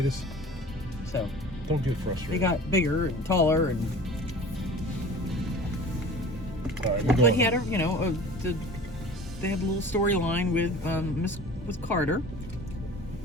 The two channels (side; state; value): both; normal; correlation 0.41